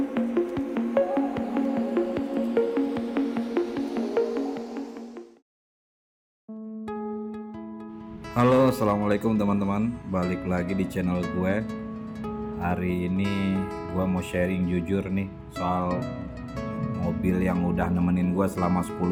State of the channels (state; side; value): identical; both; correlation 1.00